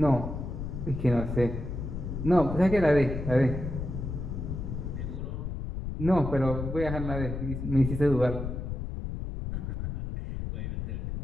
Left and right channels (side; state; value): left; noise; rumble, 5 dB below the sound